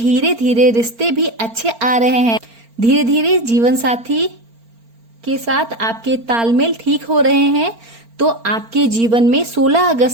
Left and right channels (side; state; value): left; late; 4.4 ms